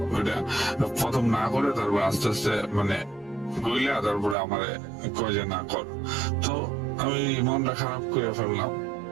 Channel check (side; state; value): left; drops out; at 4.4 s